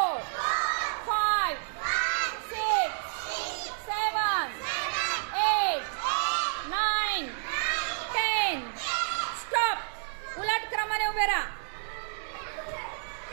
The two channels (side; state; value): left; silent; digital silence